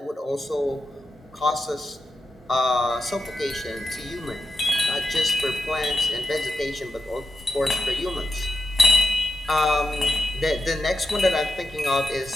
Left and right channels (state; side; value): normal; both; correlation 0.88